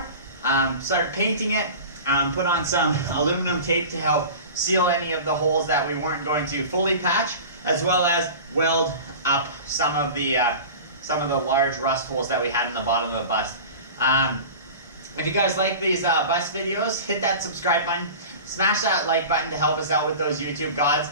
start painting it, put on some aluminum tape to help seal any of the holes that we weren't going to fully patch, as well as weld up some of the large rust holes that we had in the bottom of the bus. If you guys like these bus videos, hit that subscribe button, smash that like button to help us out with those YouTube gods,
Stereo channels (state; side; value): inverted; both; correlation -0.35